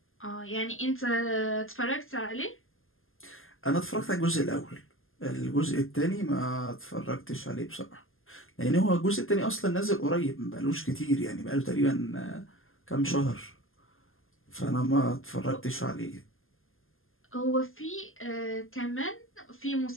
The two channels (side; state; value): right; late; 0.59 ms